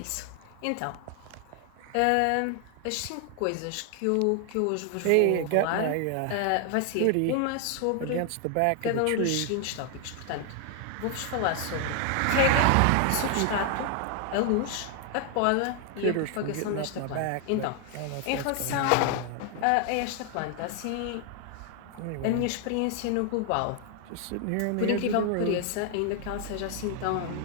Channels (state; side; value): different; both; correlation 0.00